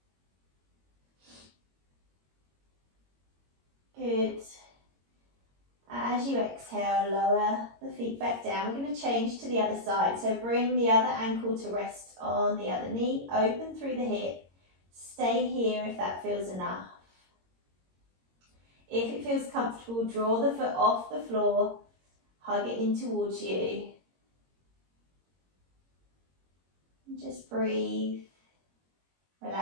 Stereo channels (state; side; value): late; left; 22 ms